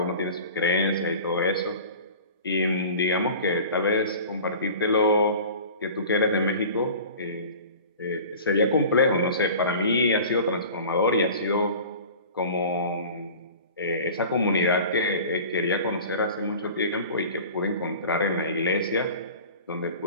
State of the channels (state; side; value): inverted; both; correlation -0.40